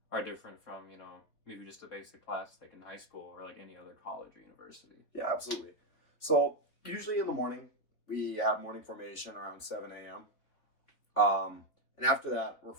are different from maybe just a basic class like in high school or like any other college or university? Yeah, absolutely. So usually in the morning we have morning formation around 7 a.m. And after that we're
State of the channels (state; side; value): late; right; 3.4 ms